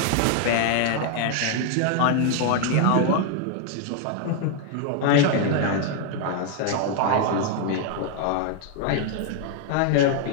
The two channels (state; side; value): different; both; correlation 0.00